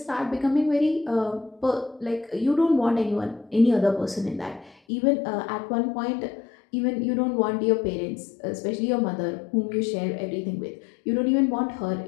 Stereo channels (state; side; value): drops out; right; at 4.8 s